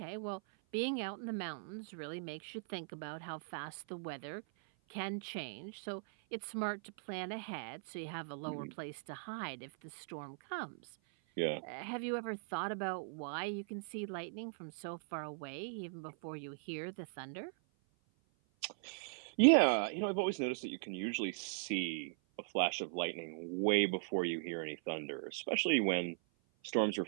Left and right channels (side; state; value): left; silent; 51 dB below the other